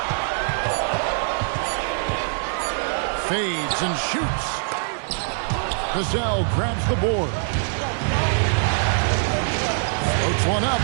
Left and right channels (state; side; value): silent; left; digital silence